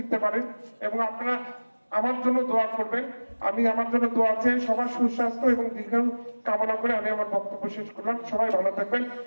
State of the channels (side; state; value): both; inverted; correlation -1.00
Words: পারেন। এবং আপনারা আমার জন্য দোয়া করবেন। আমি আমার জন্য দোয়া চেয়ে সবার সুস্বাস্থ্য এবং দীর্ঘায়ু কামনা করে আমি আমার বক্তব্য শেষ করলাম। সবাই ভালো থাকবেন।